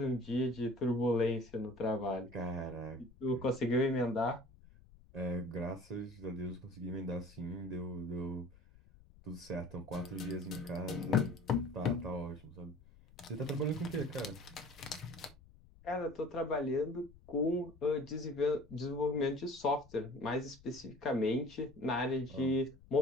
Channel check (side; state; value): left; noise; rumble, 23 dB below the sound